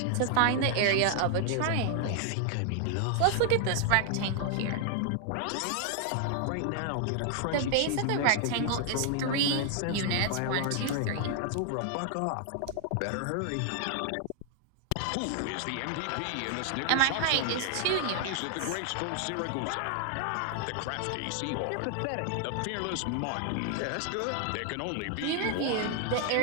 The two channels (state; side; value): different; both; correlation 0.00